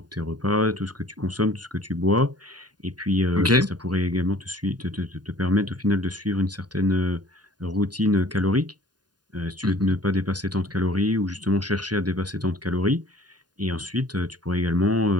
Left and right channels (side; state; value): left; late; 0.70 ms